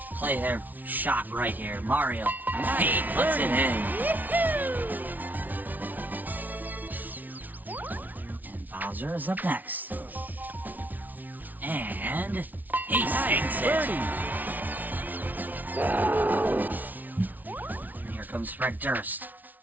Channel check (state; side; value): late; left; 0.079 ms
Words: play their shot right here. Mario, he puts it in. And Bowser is up next. And he sinks it. And here comes Fred Durst.